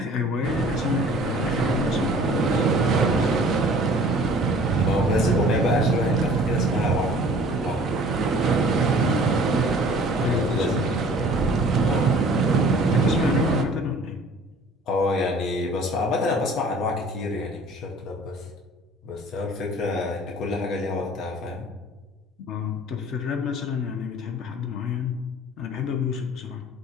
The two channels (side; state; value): both; normal; correlation 0.50